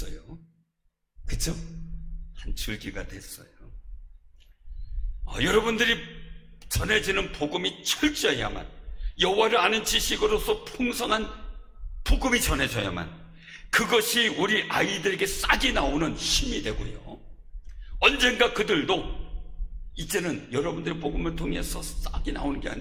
그쵸? 한 줄기가 됐어요. 여러분들이 전해지는 복음이 철저해야만, 여호와를 아는 지식으로서 풍성한 복음이 전해져야만 그것이 우리 아이들에게 싹이 나오는 힘이 되고요, 언젠가 그들도 이제는 여러분들의 복음을 통해서 싹이 나오는 게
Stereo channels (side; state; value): both; identical; correlation 1.00